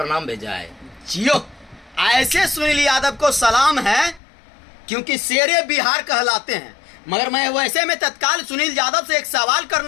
भेजा है। जियो, ऐसे सुनील यादव को सलाम है, क्योंकि शेरे बिहार कहलाते हैं। मगर मैं वैसे में तत्काल सुनील यादव से एक सवाल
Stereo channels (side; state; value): right; drops out; at 4.2 s